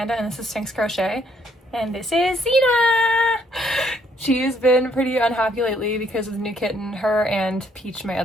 and this is Sphynx Crochet, and this is Zena. She's been pretty unhappy lately because of the new kitten. Her and Peach, my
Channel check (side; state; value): both; normal; correlation 0.68